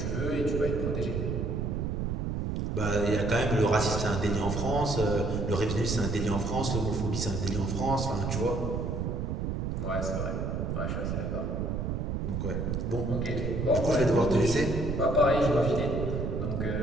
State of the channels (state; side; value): noise; right; rumble, 1 dB below the sound